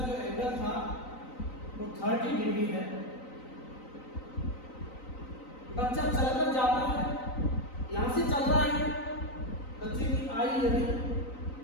जो एंगल था वो 30 डिग्री है। बच्चा चलकर जाता है, यहां से चल रहा है, बच्चे की आई यदि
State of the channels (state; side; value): late; right; 3.9 ms